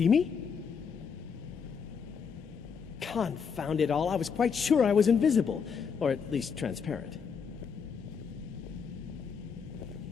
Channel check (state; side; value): quieter; right; 6.3 dB